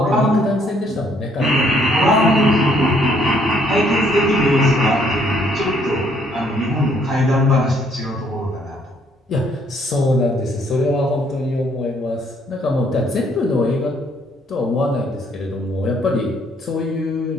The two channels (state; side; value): normal; both; correlation 0.67